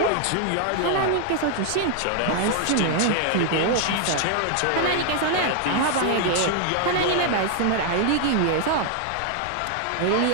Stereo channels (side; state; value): both; different; correlation 0.00